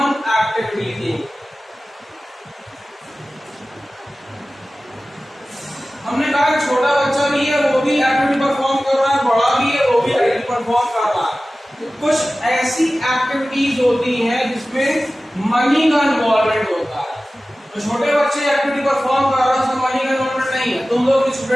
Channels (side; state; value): both; normal; correlation 0.96